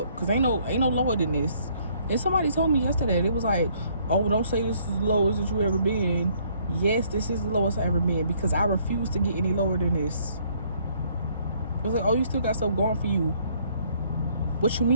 cause ain't no lower than this. And somebody told me yesterday, it was like, oh, don't say this is the lowest that you ever been. Yes, this is the lowest I ever been, because I refuse to get any lower than this. It was like, oh, you still got stuff going for you. What you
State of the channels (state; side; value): inverted; both; correlation -0.64